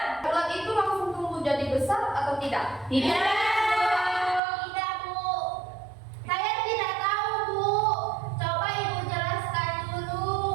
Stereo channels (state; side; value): drops out; left; at 4.4 s